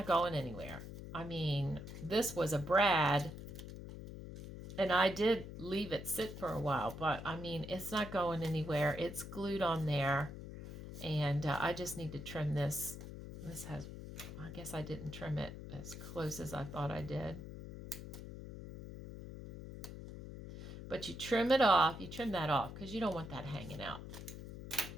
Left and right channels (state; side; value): noise; left; hum, 10 dB below the sound